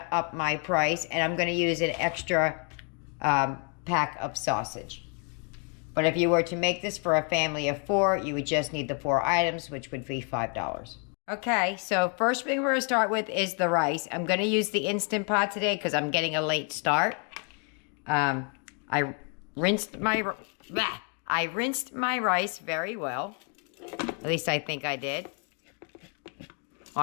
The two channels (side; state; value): right; quieter; 38.4 dB